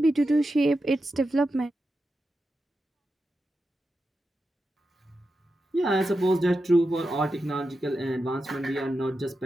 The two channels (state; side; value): normal; both; correlation 0.89